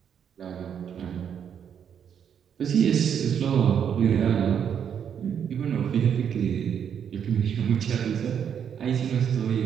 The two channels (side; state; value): left; quieter; 8.2 dB